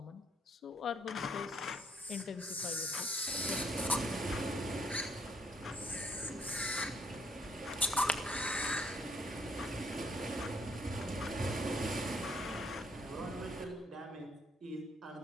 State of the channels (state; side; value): normal; both; correlation 0.69